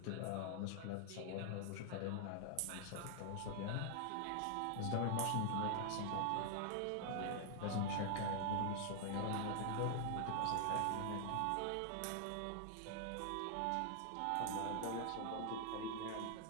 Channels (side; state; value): both; different; correlation 0.00